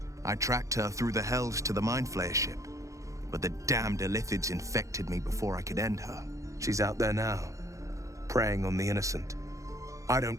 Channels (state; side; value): late; left; 0.15 ms